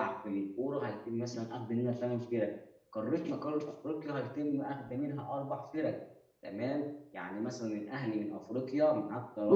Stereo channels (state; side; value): identical; both; correlation 1.00